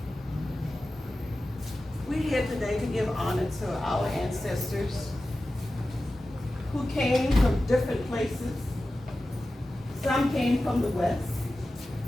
we're here today to give honor to our ancestors who came from different places. Some came from the West.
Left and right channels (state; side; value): normal; both; correlation 0.94